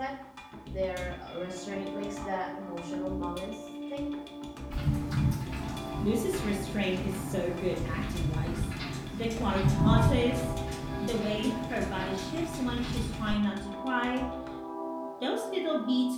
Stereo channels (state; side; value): identical; both; correlation 1.00